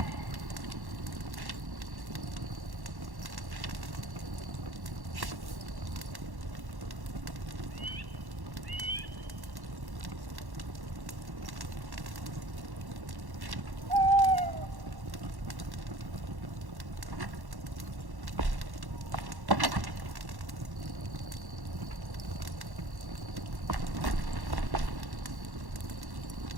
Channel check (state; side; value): late; left; 1.1 ms